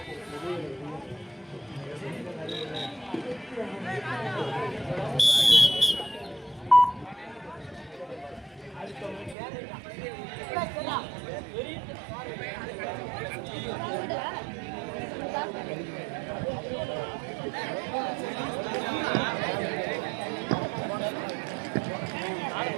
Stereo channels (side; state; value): left; drops out; at 9.3 s